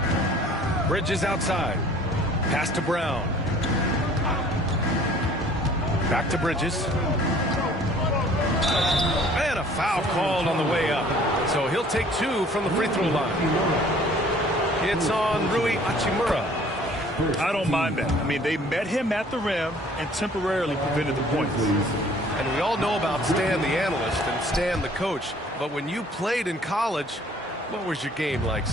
Bridges outside. Pass to Brown. Back to Bridges. And a foul called on the way up. So he'll take 2 from the free throw line. It's on Rui Hachimura. I don't mind that. I mean, they met him at the rim and temporarily prevented the points. And we all know about Stan the analyst and Stan the coach. But when you played in college, what was your game like,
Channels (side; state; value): both; normal; correlation 0.54